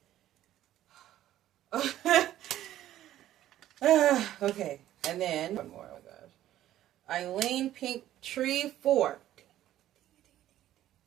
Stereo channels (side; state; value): left; quieter; 13.0 dB